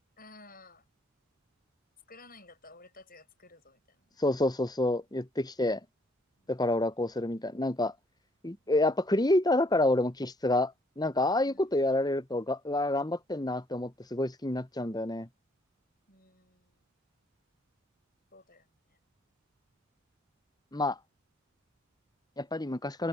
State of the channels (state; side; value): normal; both; correlation 0.66